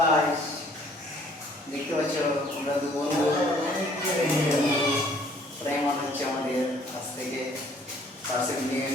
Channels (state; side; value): normal; both; correlation 0.59